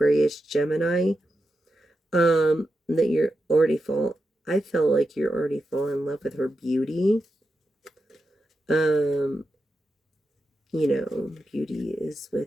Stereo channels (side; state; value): both; normal; correlation 0.88